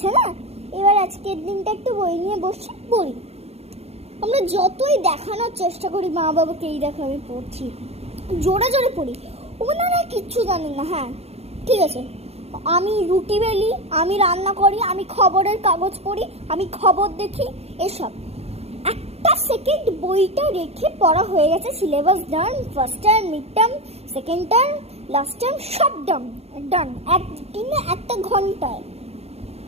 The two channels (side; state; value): left; late; 0.30 ms